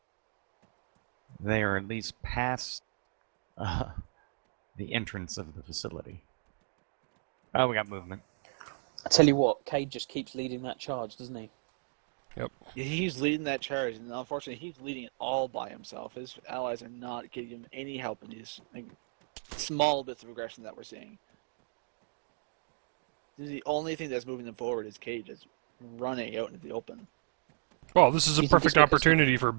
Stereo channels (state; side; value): silent; left; digital silence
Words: They are at least past the entrance of the facility. Oh, we got movement. I tell you what, Cade just keeps leading that charge, doesn't he? Yep. Yeah, he's leading that charge, and unfortunately, he's leading it all by himself. His allies are not giving him any help in these small bits of aggression that we're seeing. The only thing that's moving them forward is Cade just running out into the open. Well, this is a perfect opportunity for